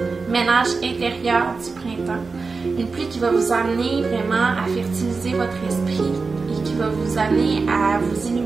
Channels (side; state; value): left; quieter; 4.4 dB